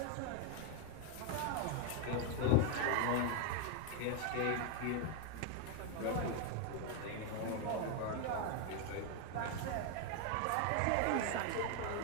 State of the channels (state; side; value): different; both; correlation 0.01